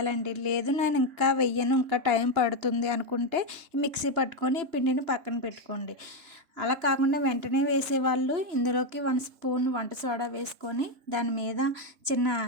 లేదు నేను ఇంకా వెయ్యను, ఇంకా టైం పడుతుంది అనుకుంటే మిక్సీ పట్టుకొని పిండిని పక్కన పెట్టుకోండి. అలా కాకుండా వెంటనే వేసేవాళ్ళు ఇందులోకి 1 స్పూన్ వంట సోడా వేసుకొని దాని మీద చిన్న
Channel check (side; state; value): left; late; 2.9 ms